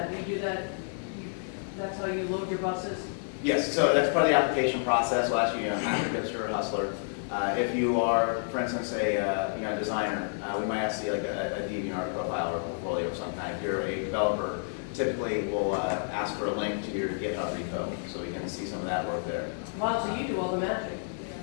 Do you do that, that's how you load your buses? Yes, so that's part of the application process. We'll ask you, after hipster or hustler. If you are, for instance, a designer, we might ask you like a DeviantArt profile or a portfolio of some kind. If you're a developer, typically we'll ask for a link to your GitHub repo so we can see some of that work there. Wow, so you do all the magic.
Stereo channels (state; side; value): silent; right; digital silence